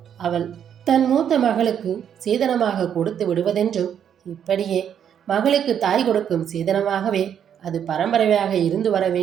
அவள் தன் மூத்த மகளுக்கு சீதனமாக கொடுத்து விடுவதென்றும், இப்படியே மகளுக்கு தாய் கொடுக்கும் சீதனமாகவே அது பரம்பரையாக இருந்து வர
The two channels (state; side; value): quieter; left; 8.8 dB